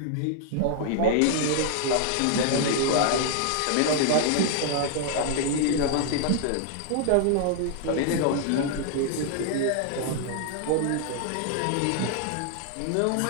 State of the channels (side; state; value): both; different; correlation 0.00